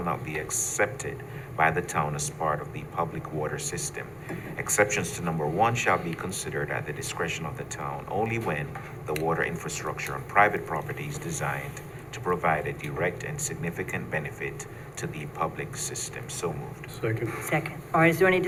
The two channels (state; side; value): identical; both; correlation 1.00